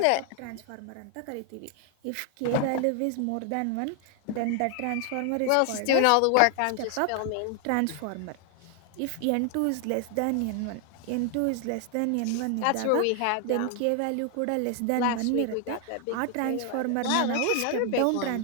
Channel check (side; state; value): both; different; correlation 0.00